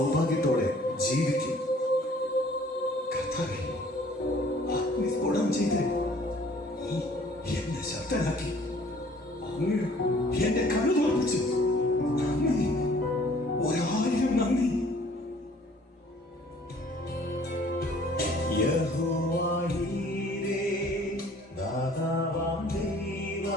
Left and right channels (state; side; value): normal; both; correlation 0.55